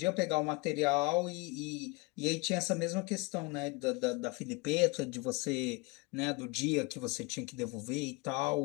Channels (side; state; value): right; quieter; 26.4 dB